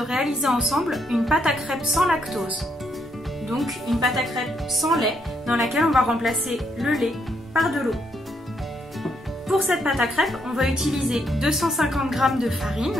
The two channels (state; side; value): normal; both; correlation 0.75